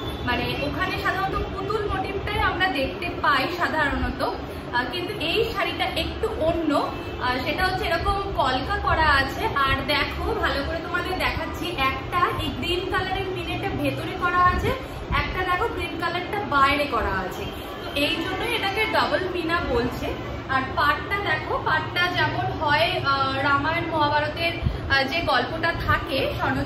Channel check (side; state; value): both; identical; correlation 1.00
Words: মানে ওখানে সাধারণত পুতুল মোটিভটাই আমরা দেখতে পাই সাধারণত, কিন্তু এই শাড়িটা একটু অন্য। সেটা হচ্ছে এরকম কলকা করা আছে। আর দেখো ভালো করে তোমাদের দেখাচ্ছি, একটা এই গ্রিন কালারের মিনেটা ভেতরে করা আছে, একটা দেখো গ্রিন কালারটা বাইরে করা আছে। তো এই জন্যই এটাকে ডবল মিনা বলছে। আর পাটটা দেখো, পাটটা যেমন হয় রামায়ণ মহাভারতের যে গল্পটা থাকে